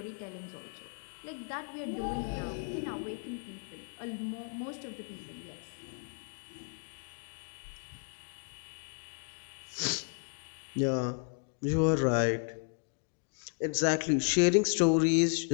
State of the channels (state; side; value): silent; right; 55 dB below the other